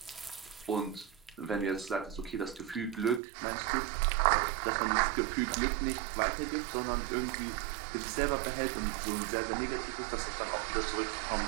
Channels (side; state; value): left; drops out; at 3.2 s